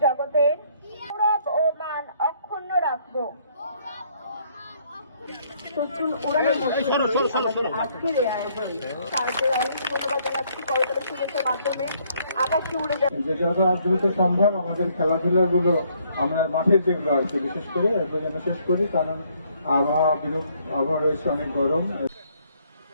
জগতের গৌরব ও মান অক্ষুণ্ণ রাখব। সচল উড়ানের মধ্যে আজকের এই আয়োজন তাদের অনেক ধন্যবাদ জানাচ্ছি। করতালি শুভেচ্ছার মাধ্যমে আকাশে উড়ে যাচ্ছে। যে যত দ্রুত সম্ভব আমাদের খেলাধুলাগুলো আমরা মাঠের যেগুলো আর কি বিশেষ করে একদম যেন শেষ করি, কারণ আবহাওয়া রয়েছে অনেক গরম।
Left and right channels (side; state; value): both; inverted; correlation -0.66